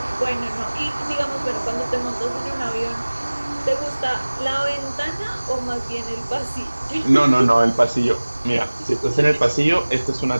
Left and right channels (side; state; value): both; inverted; correlation -1.00